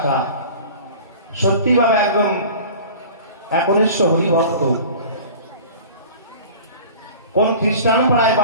সত্যিভাবে একদম একনিষ্ঠ হরিভক্ত। কোন খ্রিস্টান পাড়ায়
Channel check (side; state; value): both; inverted; correlation -0.41